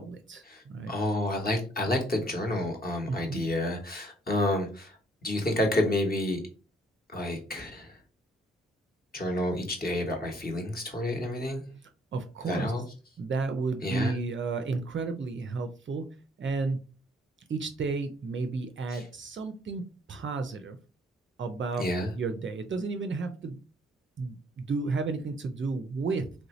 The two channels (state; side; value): normal; both; correlation 0.64